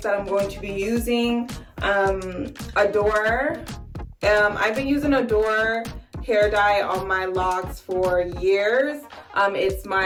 that I'm going to be using. Adore. I've been using Adore hair dye on my locks for years. It's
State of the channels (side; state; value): both; identical; correlation 1.00